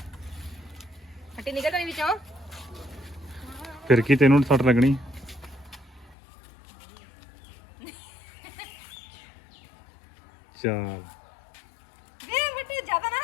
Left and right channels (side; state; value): right; drops out; at 6.2 s